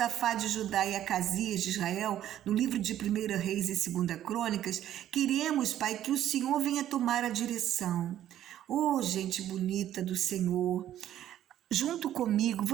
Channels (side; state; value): left; quieter; 11.8 dB